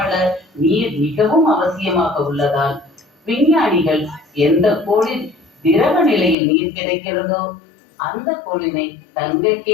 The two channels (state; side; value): drops out; right; at 6.4 s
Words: நீர் மிகவும் அவசியமாக உள்ளதால் விஞ்ஞானிகள் எந்த கோளில் திரவ நிலையில் நீர் கிடைக்கிறதோ அந்த கோளினை